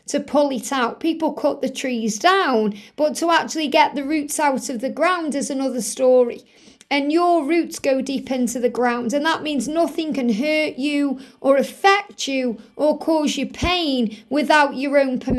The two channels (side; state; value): both; identical; correlation 1.00